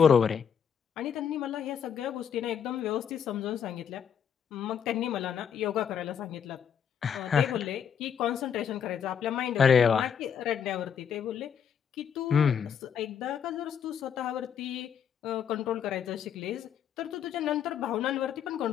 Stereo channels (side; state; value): right; quieter; 7.9 dB